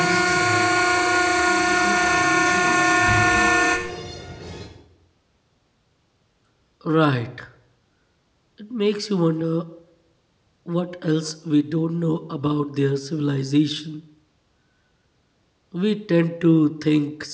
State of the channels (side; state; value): both; identical; correlation 1.00